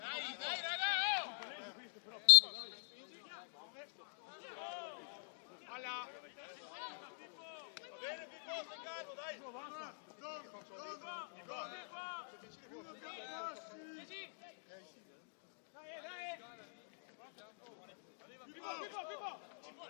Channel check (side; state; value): right; silent; digital silence